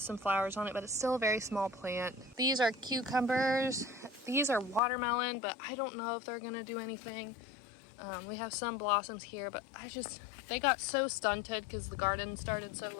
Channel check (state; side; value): drops out; right; at 4.8 s